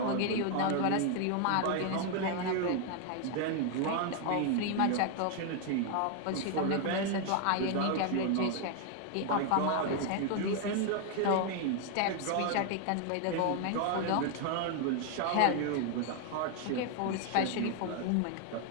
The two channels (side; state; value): both; different; correlation 0.00